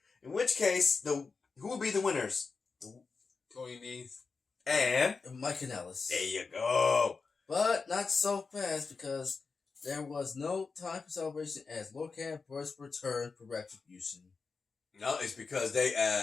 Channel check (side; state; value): right; quieter; 4.7 dB